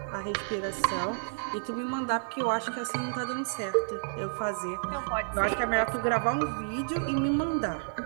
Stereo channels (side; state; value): left; silent; digital silence